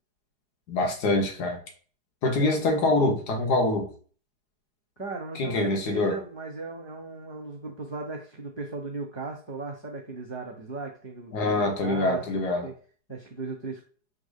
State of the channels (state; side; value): late; right; 4.8 ms